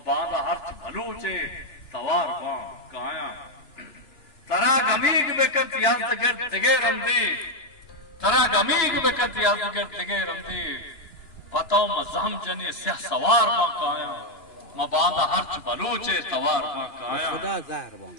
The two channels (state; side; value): late; right; 2.9 ms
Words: बांदा हर्च भलूचे तवार बा काया तरा गमीग बेकत यादगर दिगे रंदी तरा गमीग बेकत यादगर दिगे रंदी पताओ म जहम जने स्या सवार बा काया म बांदा हर्च भलूचे तवार बा काया खुदा जार बा